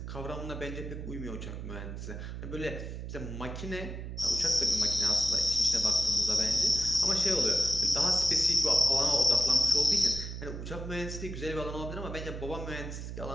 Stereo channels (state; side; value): noise; right; hum, 7 dB below the sound